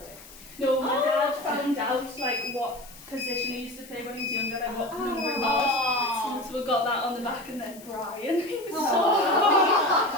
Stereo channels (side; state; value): left; noise; hiss, 20 dB below the sound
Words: it? No, my dad found out like what position he used to play when he was younger, like what number he was. So we got that on the back, and then Brian. He was